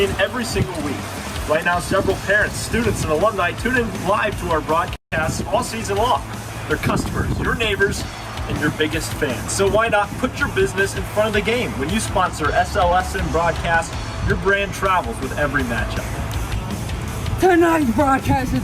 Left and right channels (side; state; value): both; identical; correlation 1.00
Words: every single week. Right now, several parents, students, and alumni tune in live to our broadcasts all season long. They're customers, your neighbors, and your biggest fans. So why not put your business in front of the game? When you sponsor SLSN broadcast, your brand travels with every matchup. Tonight's broadcast is